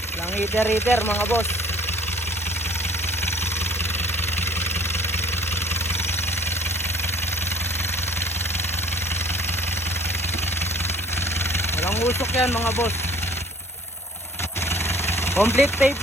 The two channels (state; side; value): normal; both; correlation 0.52